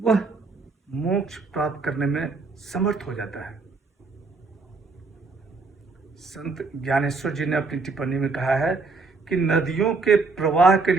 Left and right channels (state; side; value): quieter; left; 4.0 dB